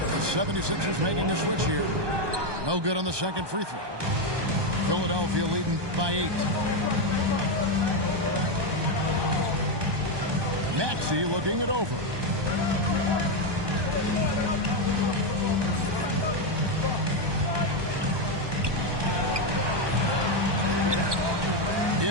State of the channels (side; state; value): left; late; 1.2 ms